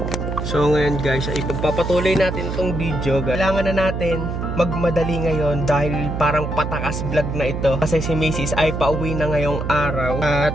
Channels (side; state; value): right; noise; hum, 4 dB below the sound